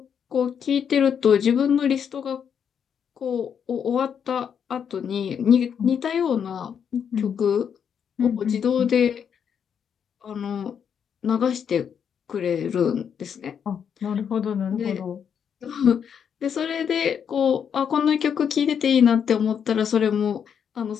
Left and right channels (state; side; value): quieter; right; 7.7 dB